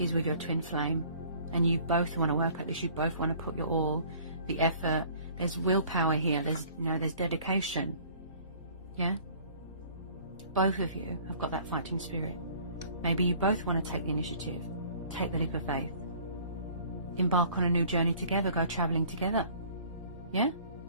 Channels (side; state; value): both; inverted; correlation -0.52